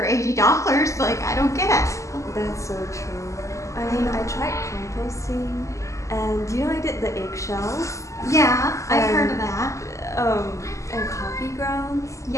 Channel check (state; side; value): late; right; 0.15 ms